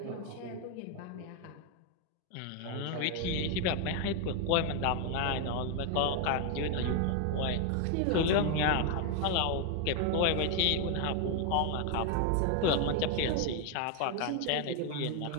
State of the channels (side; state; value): both; different; correlation 0.01